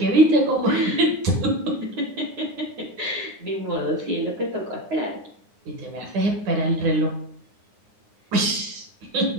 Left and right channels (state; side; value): late; left; 9.7 ms